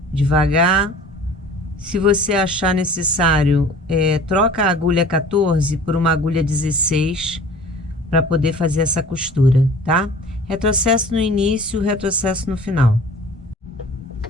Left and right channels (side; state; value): both; normal; correlation 0.45